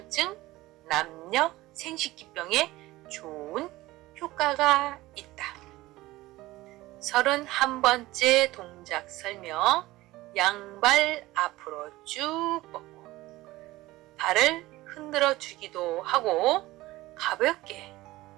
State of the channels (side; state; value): left; quieter; 18.3 dB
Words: 남녀 생식기병에 좋은 효과가 있다. 31번째 동작 설명. 양발 앞으로 쭉 뻗고 발을 흔들어 주기도 하고 가볍게